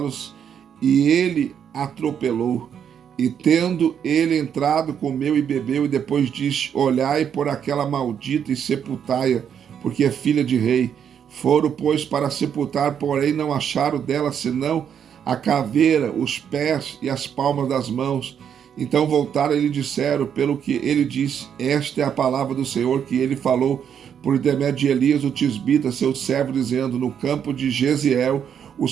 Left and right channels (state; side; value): quieter; left; 8.3 dB